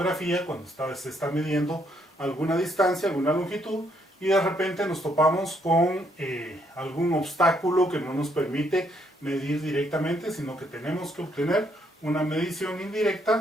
cuando se está midiendo alguna distancia, alguna longitud, y de repente nos topamos con algún obstáculo que no nos permite medir directamente, sino que tenemos que obtener una medición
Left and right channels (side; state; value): both; normal; correlation 0.72